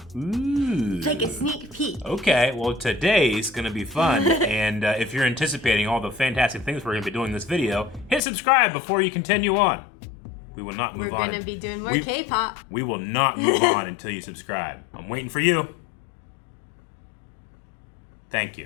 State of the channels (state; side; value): drops out; right; at 8.2 s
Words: It's like a sneak peek. Okay, well today's gonna be fun, and if you're anticipating all the fantastic things we're gonna be doing in this video, hit subscribe before you continue on. We will not move on. We're gonna be doing more K-pop. We will not move on until you subscribe. I'm waiting for you. Thank